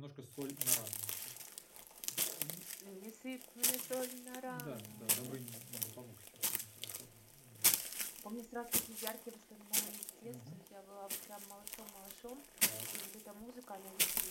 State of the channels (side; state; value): both; identical; correlation 1.00